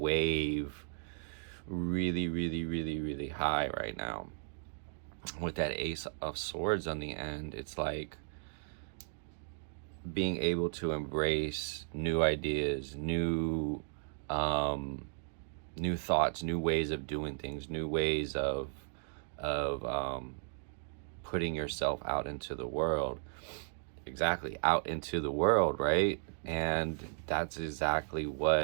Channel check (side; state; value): left; silent; digital silence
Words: really high right now with that Ace of Swords on the end. It's like being able to embrace new ideas, new thoughts, new ways of doing things, new ways of putting yourself out into the world. Exactly, out into the world, right? And that's exactly